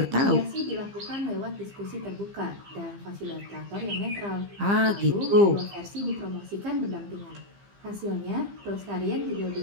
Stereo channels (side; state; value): left; late; 15 ms